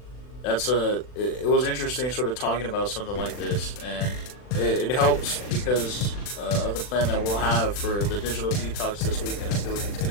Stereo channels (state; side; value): late; right; 40 ms